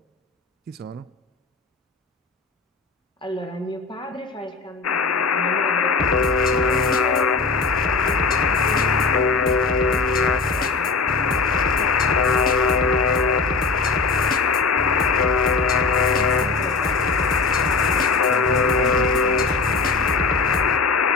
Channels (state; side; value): quieter; right; 4.5 dB